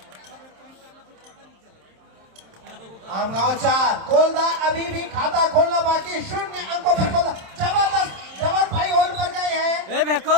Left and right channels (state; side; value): late; left; 27 ms